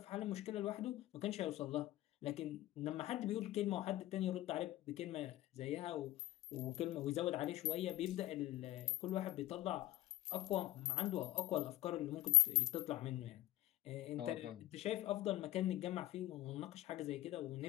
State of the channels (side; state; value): right; quieter; 15.7 dB